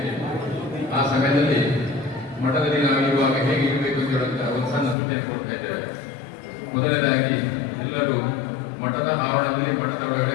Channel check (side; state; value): right; drops out; at 5.0 s